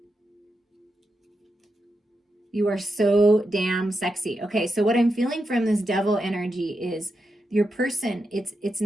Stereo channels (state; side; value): normal; both; correlation 0.86